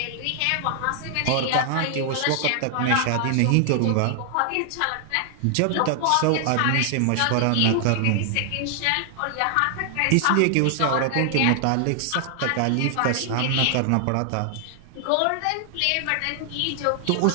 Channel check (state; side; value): different; both; correlation 0.00